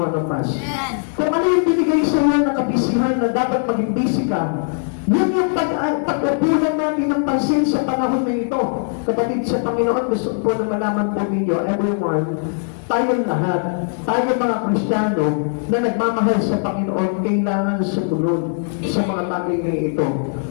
of us. Kung ano yung binigay sa iyo na kabisihan na dapat maging busy ka, Yun yung pag-upunan natin ng pansin sa panahon na ito. Kapatid sa Panginoon, gusto po na malaman po ninyo, everyone, tayong lahat, tayong mga Kristiyano na nagmamahal sa Panginoon, kailangan sumunod sa mga bagay na ito.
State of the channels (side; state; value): right; silent; digital silence